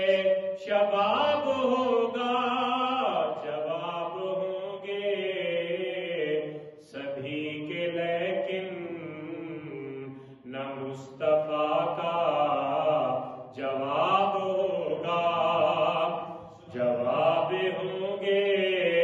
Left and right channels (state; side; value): identical; both; correlation 1.00